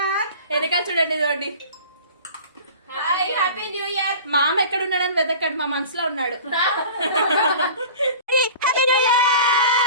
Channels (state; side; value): inverted; both; correlation -0.40